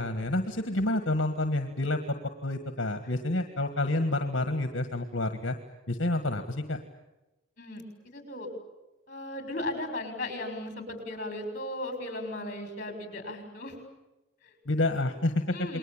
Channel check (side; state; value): both; normal; correlation 0.40